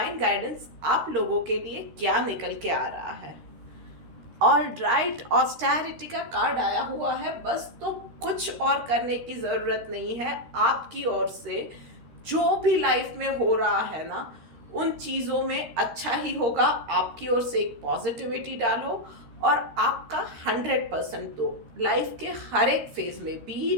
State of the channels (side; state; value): left; late; 13 ms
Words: गाइडेंस आप लोगों के लिए क्या निकल के आ रहा है। ऑल राइट, ऑस्टेरिटी का कार्ड आया हुआ है। बस तो कुछ और करने की ज़रूरत नहीं है। आपकी ओर से जो भी लाइफ में हो रहा है ना, उन चीज़ों में अच्छा ही होगा। आपकी ओर से एक पॉजिटिविटी डालो और आपका 100% दो लाइफ के हर एक फेज में,